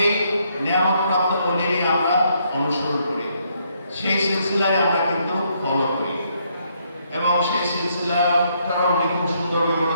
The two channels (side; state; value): both; inverted; correlation -0.73